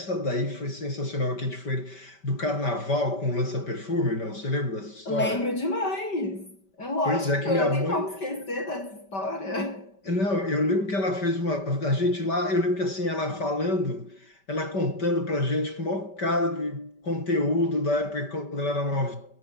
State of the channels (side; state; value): right; late; 5.1 ms